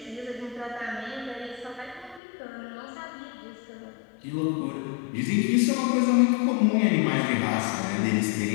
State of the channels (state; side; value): drops out; right; at 2.2 s